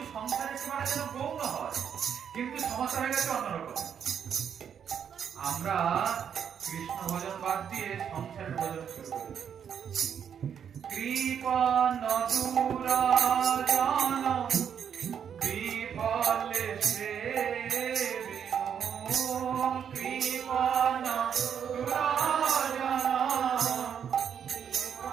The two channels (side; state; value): left; quieter; 8.1 dB